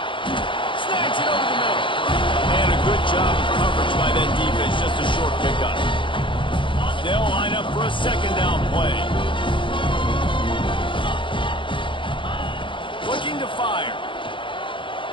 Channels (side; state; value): right; late; 0.24 ms